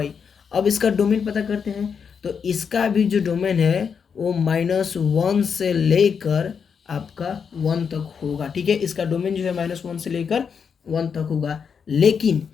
अब इसका डोमेन पता करते हैं, तो इसका भी जो डोमेन है वो -1 से लेकर आपका 1 तक होगा। ठीक है, इसका डोमेन जो है -1 से लेकर 1 तक होगा। लेकिन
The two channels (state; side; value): quieter; right; 6.5 dB